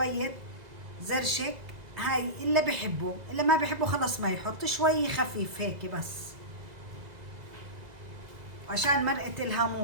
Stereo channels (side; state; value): left; late; 2.0 ms